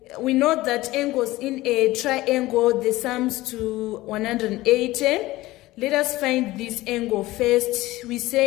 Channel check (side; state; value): right; quieter; 18.1 dB